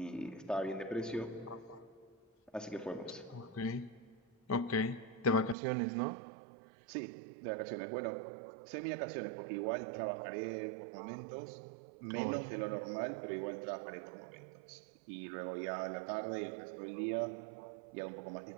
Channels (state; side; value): drops out; left; at 5.6 s